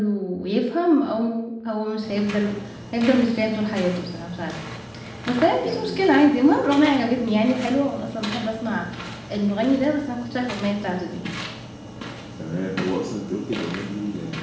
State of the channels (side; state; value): both; identical; correlation 1.00